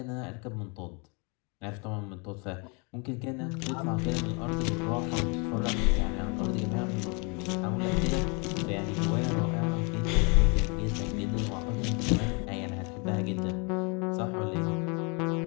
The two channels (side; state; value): right; quieter; 32.8 dB